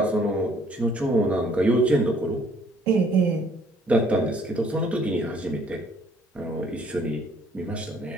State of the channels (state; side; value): normal; both; correlation 0.61